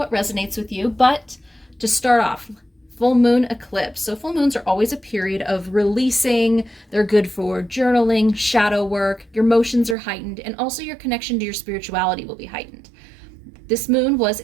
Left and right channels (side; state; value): left; drops out; at 10.0 s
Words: resonates with you. But to start off, full moon eclipse. So full moons are always a period of releasing. They're good for journaling, shadow work. Your emotions are heightened, and also your connection to your spirituality will be heightened. This moon was